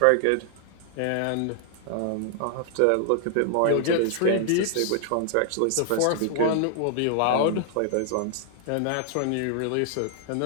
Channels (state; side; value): different; both; correlation -0.01